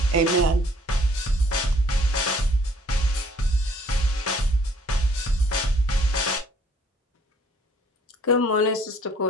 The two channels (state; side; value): normal; both; correlation 0.60